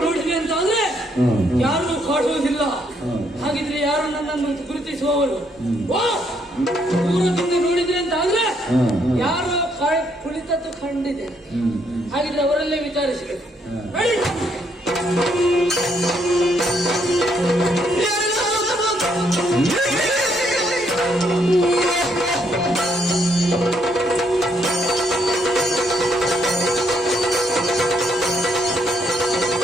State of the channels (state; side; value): normal; both; correlation 0.72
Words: ನೋಡಿದೆ ಅಂತಾದ್ರೆ ಯಾರು ಕಾಡುವುದಿಲ್ಲ. ಹಾಗಿದ್ರೆ ಯಾರು ನನ್ನನ್ನು ಗುರುತಿಸುವವರು? ದೂರದಿಂದ ನೋಡಿದ್ರೆ ಅಂತಾದ್ರೆ ಯಾರು ಕುಳಿತದ್ದು ಕಂಡಿದೆ. ಹಾಗಿದ್ರೆ ಅವರಲ್ಲೇ ವಿಚಾರಿಸಬೇಕು.